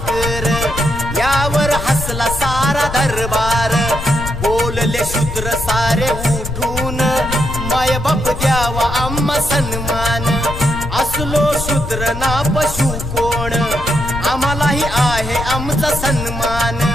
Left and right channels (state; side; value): noise; left; rumble, 7 dB below the sound